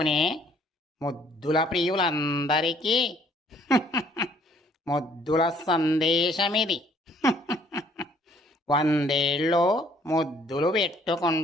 ముద్దుల ప్రియులందరికీ ముద్దుల సందేశమిది. 100 ఏళ్ళు ముద్దులు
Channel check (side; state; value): both; normal; correlation 0.62